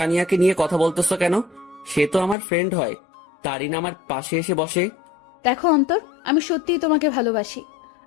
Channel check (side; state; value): right; drops out; at 2.4 s